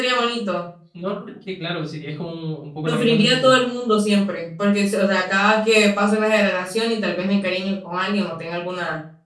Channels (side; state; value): both; identical; correlation 1.00